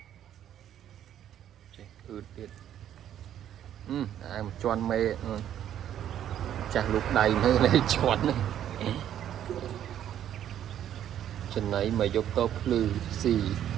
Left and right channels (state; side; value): quieter; left; 10.6 dB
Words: ចេះអឺតទៀតអាមកជន់មេចាស់លូកដៃមើលនេះជន់ចំណៃមកយកតភ្លឺស៊